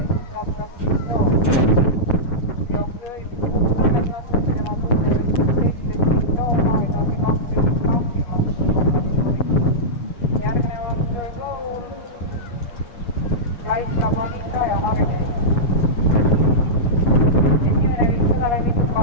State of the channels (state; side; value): late; right; 8.4 ms